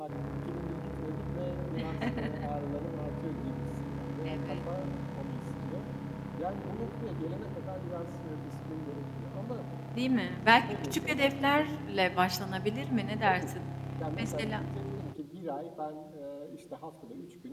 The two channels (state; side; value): identical; both; correlation 1.00